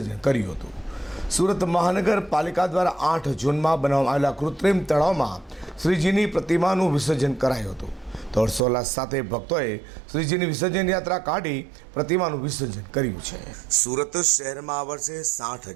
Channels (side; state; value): left; drops out; at 8.6 s